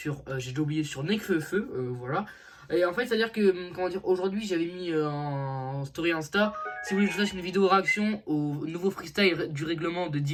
j'ai déjà oublié, sur Nekfeu, voilà. Et en fait, c'est-à-dire que, comment dire, aujourd'hui j'avais mis en story Insta, si vous voulez que je fasse une vidéo réaction au nouveau freestyle du règlement de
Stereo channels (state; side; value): identical; both; correlation 1.00